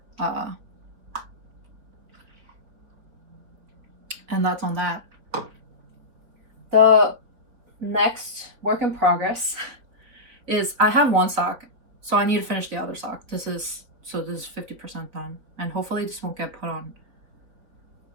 And that's on that. The next work in progress is I have one sock, so I need to finish the other sock. This is 50% done, and hopefully this won't get put on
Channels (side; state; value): left; late; 4.1 ms